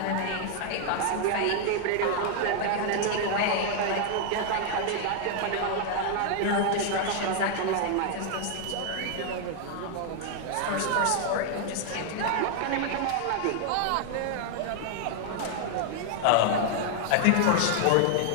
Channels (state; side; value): different; both; correlation 0.00